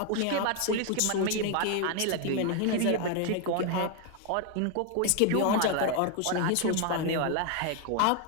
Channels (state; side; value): different; both; correlation 0.01